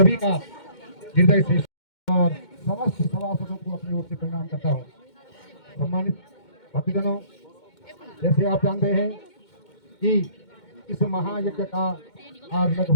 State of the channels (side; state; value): right; late; 2.2 ms